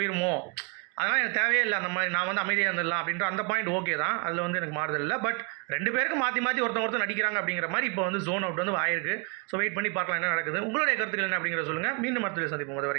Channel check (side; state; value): left; quieter; 35.3 dB